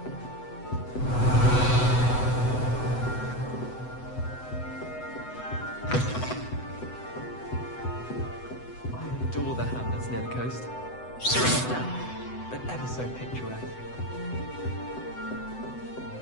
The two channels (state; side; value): late; right; 7.9 ms